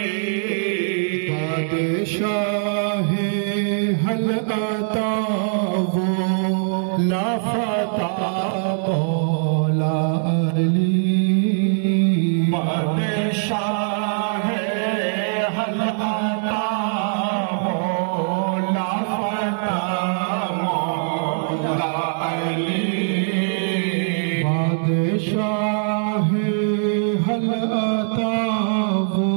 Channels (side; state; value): left; silent; digital silence